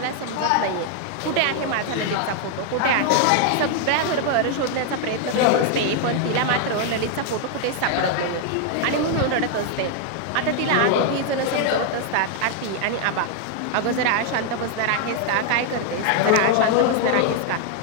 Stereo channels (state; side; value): different; both; correlation 0.00